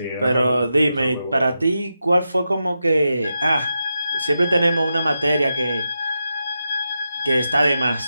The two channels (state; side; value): inverted; both; correlation -0.88